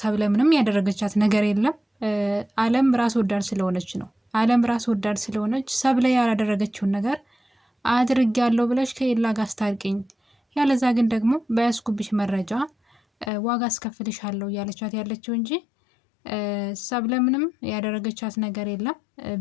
ምንም ያደረገቻት ነገር የለም። አለም ራስ ወዳድ ስለሆነች ነው። አለም ራስ ወዳድ ስለሆነች ሰብለ ያላደረገችውን ነገር አድርጊያለሁ ብለሽ ከኤላ ጋር አስታርቂኝ፣ ያለዛ ግን ደግሞ በያዝኩብሽ መረጃ ዋጋ አስከፍልሻለሁ እያለቻት ያለችው እንጂ ሰብለ ምንም ያደረገቻት ነገር የለም።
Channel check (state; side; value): drops out; right; at 13.3 s